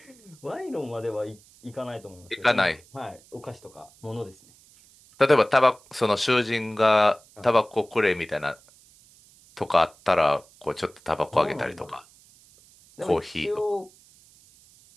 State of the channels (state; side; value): noise; right; hiss, 27 dB below the sound